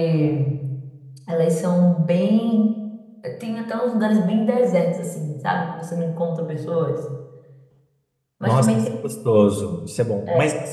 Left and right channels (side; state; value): both; identical; correlation 1.00